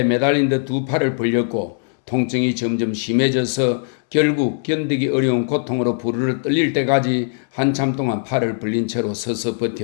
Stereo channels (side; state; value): right; silent; 66 dB below the other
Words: 매달린 듯 두 팔을 벌렸고 통증이 점점 심해져서 결국 견디기 어려운 고통으로 부르르 떨릴 때까지 한참 동안 팔을 벌린 채로 서서